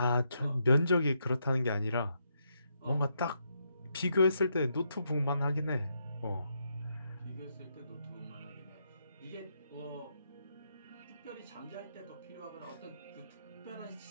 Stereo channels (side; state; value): both; inverted; correlation -0.79